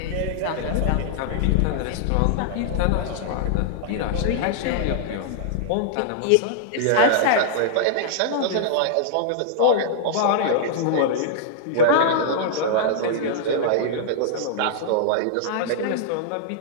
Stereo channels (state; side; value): different; both; correlation -0.01